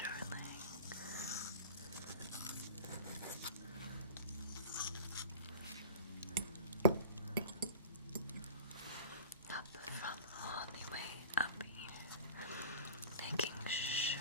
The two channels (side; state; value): both; inverted; correlation -0.37